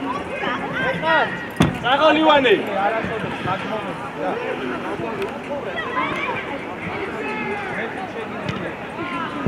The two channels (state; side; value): identical; both; correlation 1.00